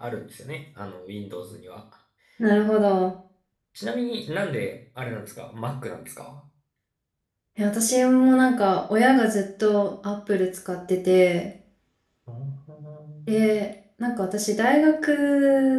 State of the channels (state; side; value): identical; both; correlation 1.00